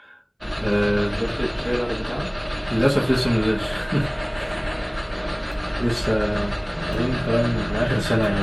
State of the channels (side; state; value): both; identical; correlation 1.00